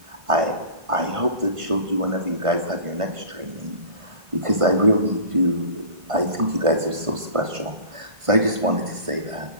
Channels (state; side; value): late; left; 1.5 ms